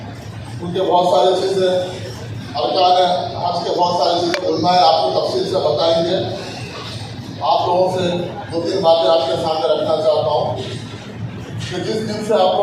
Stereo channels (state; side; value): identical; both; correlation 1.00